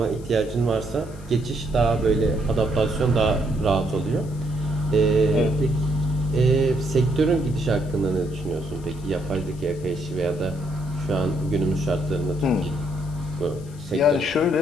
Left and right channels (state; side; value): noise; left; hiss, 24 dB below the sound